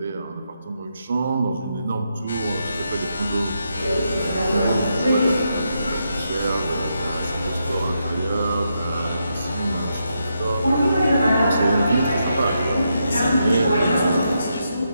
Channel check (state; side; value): inverted; both; correlation -0.82